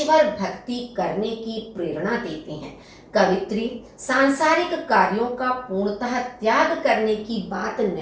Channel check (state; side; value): identical; both; correlation 1.00